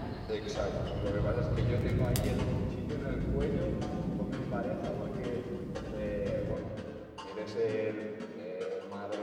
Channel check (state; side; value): identical; both; correlation 1.00